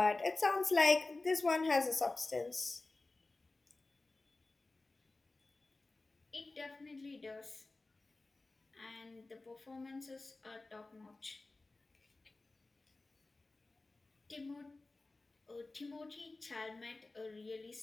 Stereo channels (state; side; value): quieter; right; 3.3 dB